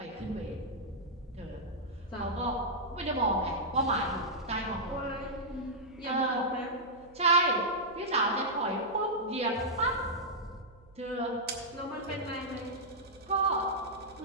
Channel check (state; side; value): noise; right; hum, 25 dB below the sound